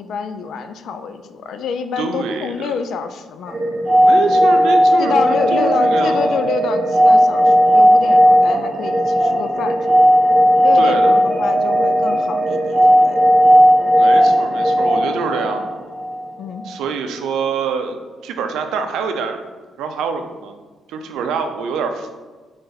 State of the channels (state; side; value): normal; both; correlation 0.93